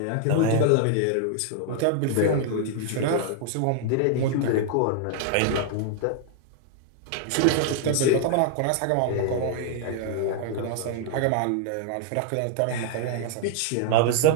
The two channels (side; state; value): both; different; correlation 0.00